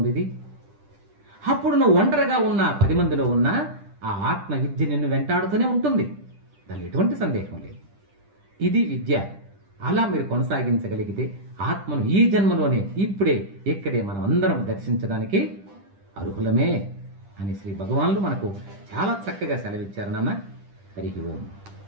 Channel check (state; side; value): late; left; 10 ms